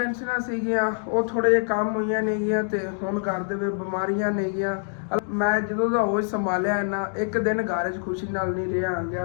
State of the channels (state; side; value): silent; right; 62 dB below the other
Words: ਸੀਗੀਆਂ, ਉਹ ਥੋੜੇ ਜਿਹੇ ਕੰਮ ਹੋਈਆਂ ਨੇਗੀਆਂ ਤੇ ਹੁਣ ਘਰ ਦੇ ਵਿੱਚ ਬਿਮਾਰੀਆਂ ਨੇਗੀਆਂ। ਮੈਂ ਜਦੋਂ ਦਾ ਹੋਸ਼ ਸੰਭਾਲਿਆ ਨਾ ਇੱਕ ਦਿਨ ਘਰ 'ਚ ਖੁਸ਼ੀ ਨਾਲ ਨਹੀਂ ਰਿਹਾ